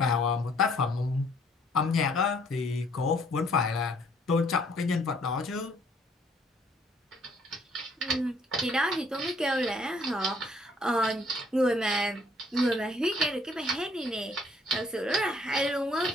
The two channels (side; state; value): both; normal; correlation 0.63